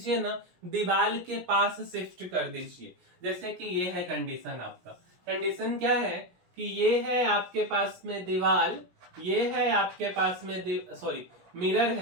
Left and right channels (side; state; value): left; late; 17 ms